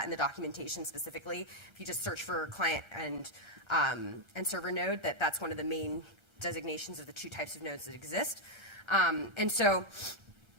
in the documentation specifically. If you just search for client and server node, that's one of the main designations of the 2 types of nodes that exist. And so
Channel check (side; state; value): left; late; 1.3 ms